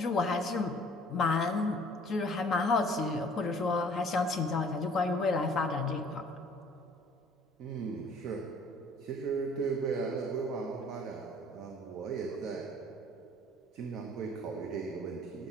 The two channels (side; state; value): both; normal; correlation 0.54